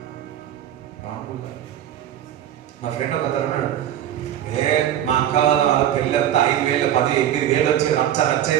మా ఫ్రెండ్ ఒక అన్నాడు, మా అక్క వాళ్ళ పెళ్ళి అంతా 5,000 10 8,000 వచ్చి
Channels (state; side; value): quieter; left; 11.2 dB